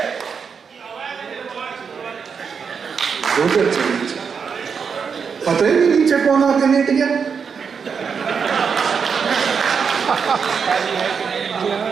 पता ही नहीं नीचे कौन आके लेट गया।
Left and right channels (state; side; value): quieter; left; 6.2 dB